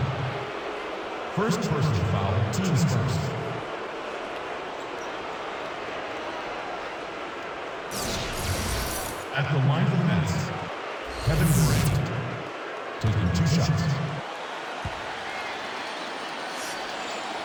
First personal foul, teams first. At the line for the Nets, Kevin Durant, taking 2 shots.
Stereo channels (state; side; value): identical; both; correlation 1.00